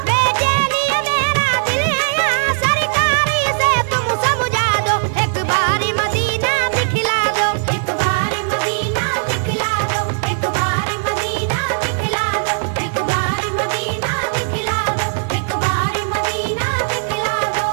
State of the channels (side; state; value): left; silent; 67 dB below the other